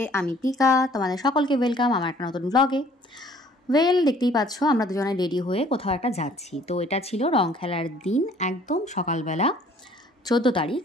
আমি পিকা, তোমাদের সকলকে ওয়েলকাম আমার একটা নতুন ব্লগে। দেখতেই পাচ্ছ আমরা দুজনে রেডি হয়ে কোথাও একটা যাচ্ছি। তো এটা ছিল রং খেলার দিন, একদম সকালবেলা 14 তারিখ।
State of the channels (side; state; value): both; normal; correlation 0.56